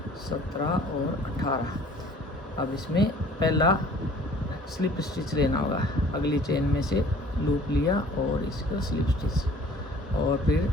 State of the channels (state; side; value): normal; both; correlation 0.51